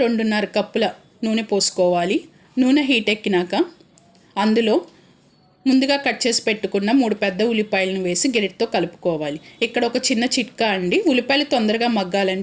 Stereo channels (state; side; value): identical; both; correlation 1.00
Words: కప్పుల నూనె పోసుకోవాలి. నూనె హీట్ ఎక్కినాక అందులో ముందుగా కట్ చేసి పెట్టుకున్న 3 పెద్ద ఉల్లిపాయలను వేసి గెరిటితో కలుపుకోవాలి. ఇక్కడ ఒక చిన్న చిట్కా అండి, ఉల్లిపాయలు తొందరగా